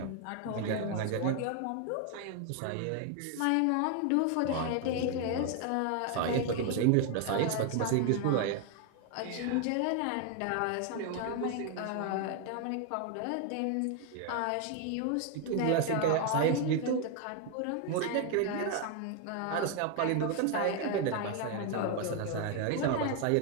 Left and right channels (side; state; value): both; different; correlation 0.01